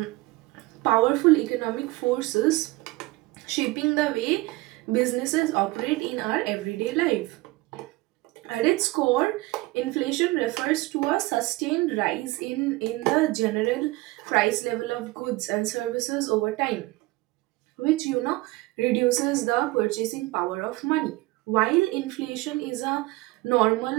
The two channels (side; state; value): left; quieter; 20.7 dB